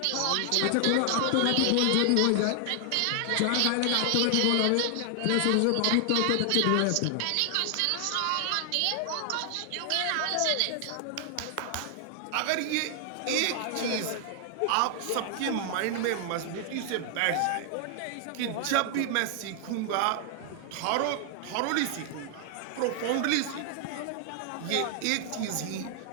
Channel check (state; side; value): different; both; correlation 0.00